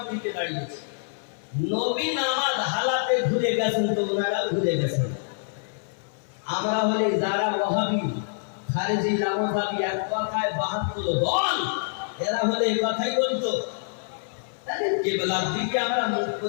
দিকে দাঁড়িয়েছি। নবী নামাজ হালাতে ঘুরে গেছেন তো ওনারা ঘুরে গেছেন। আমরা হলে যারা ওয়াহাবি খারিজি লামাজাবি এক কথায় 72 দল, এরা হলে এই কথাই বলতো। তাহলে কিবলার দিকে আমরা মুখ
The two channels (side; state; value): right; silent; 61 dB below the other